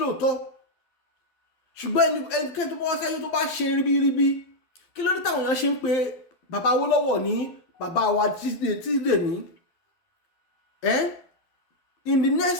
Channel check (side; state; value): right; late; 12 ms